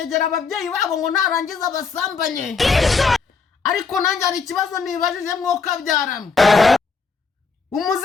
ababyeyi babo ngo narangiza basambanye. Ariko nanjye ari ikibazo nibajije mwoka byaramwe.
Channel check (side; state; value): right; quieter; 4.9 dB